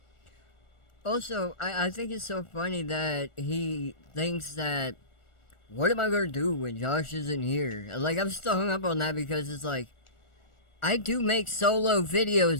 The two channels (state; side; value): late; right; 1.4 ms